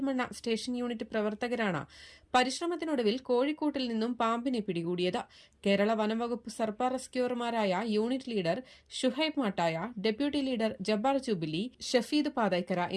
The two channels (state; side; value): identical; both; correlation 1.00